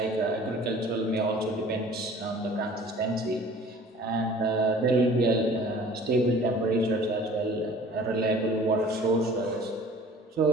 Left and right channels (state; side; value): normal; both; correlation 0.48